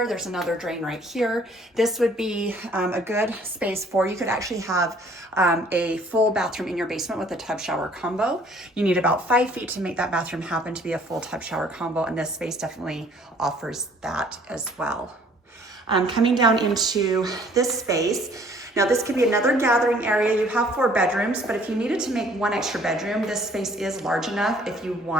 There's another drain right here. This would be a good space for, you could actually have a full bathroom in your basement with a tub shower combo. You need about 5 feet to make that bathroom happen to be a full tub shower combo, and this space definitely offers that as well. Coming down into this space, now this could be another gathering area. You have 4 bedrooms, but if you needed to make 1 extra bedroom, this space is large enough if you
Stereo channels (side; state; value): both; normal; correlation 0.57